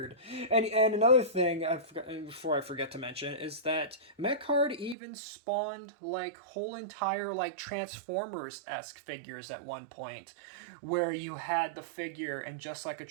And another thing before I forget to mention is that Mecard even spawned like whole entire like Transformers-esque figures at one point, where you had the figure and just like a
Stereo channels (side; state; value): left; drops out; at 5.0 s